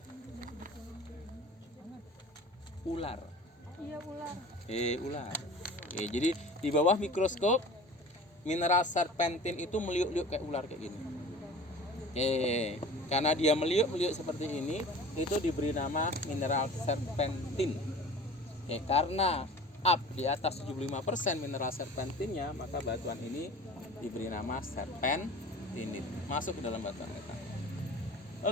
Ular. Iya, ular. Ular. Jadi di bawah mikroskop mineral serpentin itu meliuk-liuk kayak ular kayak gini. Karena dia meliuk-liuk seperti ini, itu diberi nama mineral serpentin. Karena up di atas 75% mineral serpentinnya, maka batuan ini diberi nama serpentinit. Masuk ke dalam batuan kita.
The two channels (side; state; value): both; normal; correlation 0.41